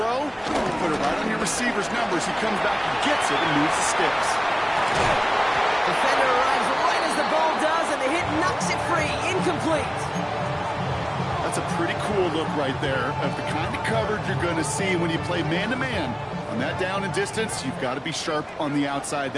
you put it right on your receiver's numbers. He comes back and gets it and moves the sticks. Defender arrives right as the ball does, and the hit knocks it free. Incomplete. That's a pretty cool look right there of the kind of coverage you're going to see when you play man-to-man. On that down and distance, you've got to be sharp on the outside.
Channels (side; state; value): both; identical; correlation 1.00